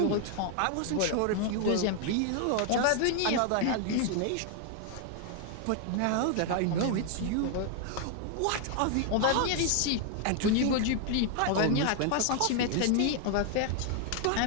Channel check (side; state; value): both; different; correlation 0.00